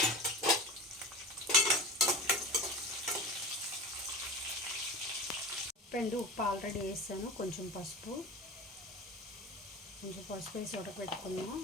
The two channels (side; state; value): both; normal; correlation 0.31